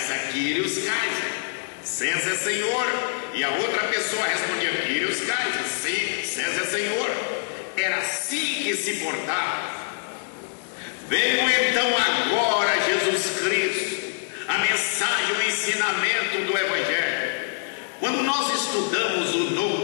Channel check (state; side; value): silent; right; digital silence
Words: Kyrios Kaiser, César é Senhor. E a outra pessoa respondia, Kyrios Kaiser, sim, César é Senhor. Era assim que se portava. Veio então agora Jesus Cristo, a mensagem, o ensinamento do Evangelho. Quando nós estudamos o